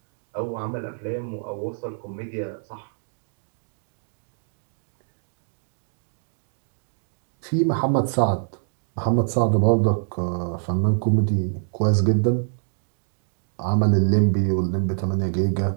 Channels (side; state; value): left; silent; digital silence